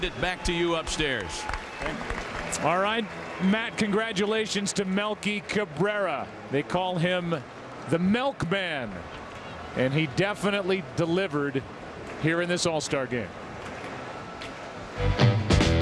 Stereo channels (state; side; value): identical; both; correlation 1.00